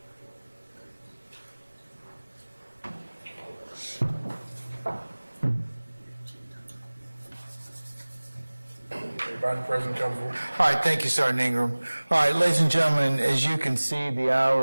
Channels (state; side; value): inverted; both; correlation -1.00